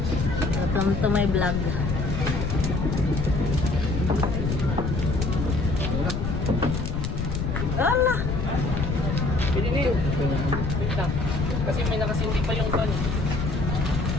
Welcome to my vlog. Ala! Pininin. Wait lang. Kasi may nakasindi pa yung ban.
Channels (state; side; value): noise; left; rumble, 2 dB below the sound